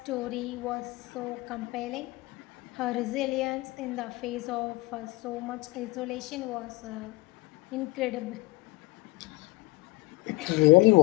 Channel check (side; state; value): right; quieter; 22.5 dB